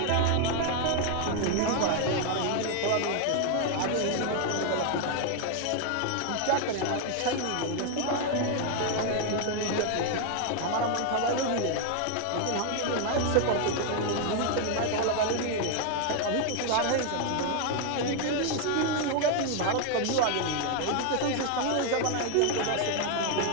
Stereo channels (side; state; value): both; different; correlation 0.01